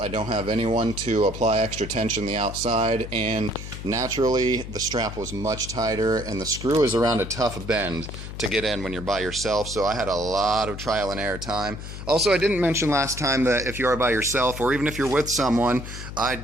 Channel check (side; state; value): left; noise; hum, 10 dB below the sound